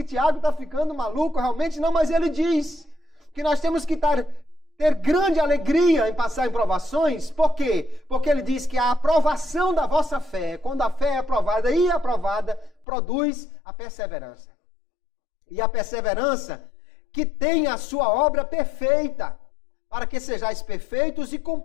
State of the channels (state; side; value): drops out; right; at 12.9 s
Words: Tiago está ficando maluco, realmente não, mas ele diz que nós temos que ter grande alegria em passar em provações. Por quê? Porque ele diz que a aprovação da vossa fé, quando a fé é aprovada e aprovada, produz a perseverança. E a perseverança que tem a sua obra perfeita, para que sejais perfeitos e